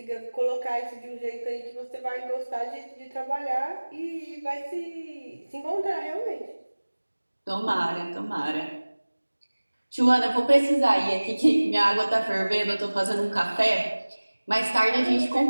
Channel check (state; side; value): inverted; both; correlation -1.00